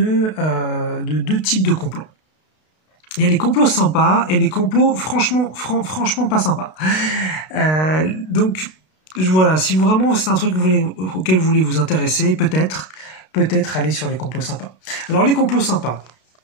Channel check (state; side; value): late; right; 32 ms